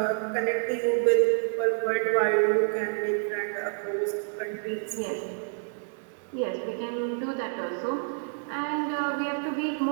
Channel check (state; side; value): silent; left; 59 dB below the other